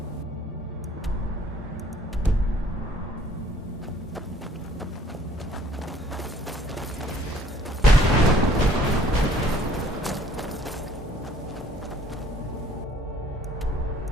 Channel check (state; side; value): normal; both; correlation 0.58